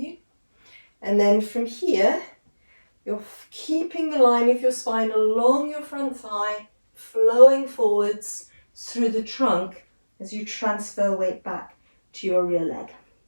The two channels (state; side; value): inverted; both; correlation -1.00